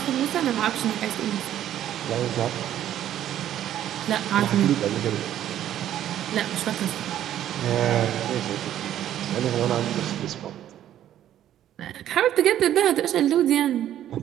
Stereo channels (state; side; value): quieter; left; 11.6 dB